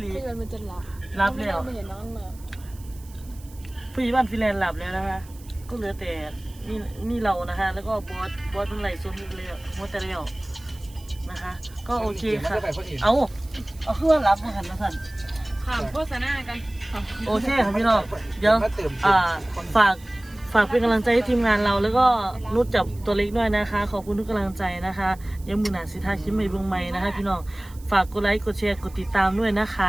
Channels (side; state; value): right; noise; hiss, 23 dB below the sound